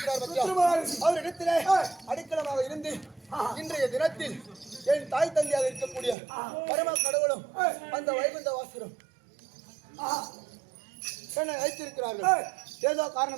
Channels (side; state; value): left; drops out; at 6.2 s